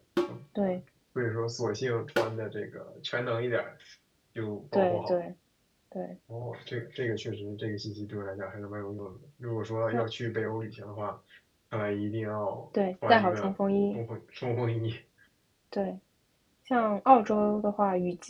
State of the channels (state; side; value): identical; both; correlation 1.00